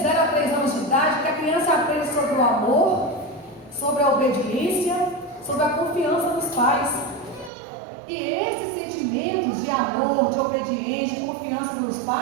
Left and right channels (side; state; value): left; drops out; at 7.5 s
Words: 0 a 3 anos de idade que a criança aprende sobre o amor, sobre a obediência, sobre a confiança nos pais. E esses sentimentos de amor, de obediência, de confiança nos